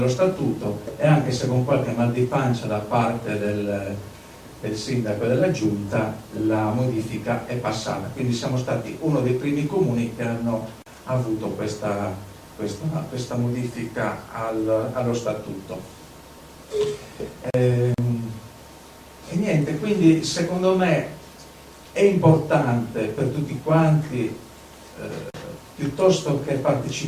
statuto, e anche se con qualche mal di pancia da parte del sindaco e della giunta, la modifica è passata. Quindi siamo stati uno dei primi comuni che hanno avuto questa modifica allo statuto. E niente, quindi secondo me è importante per tutti quanti, piuttosto che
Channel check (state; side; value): identical; both; correlation 1.00